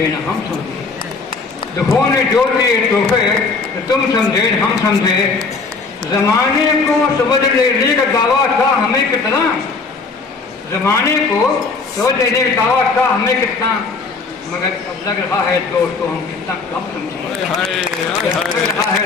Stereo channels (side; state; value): right; quieter; 4.3 dB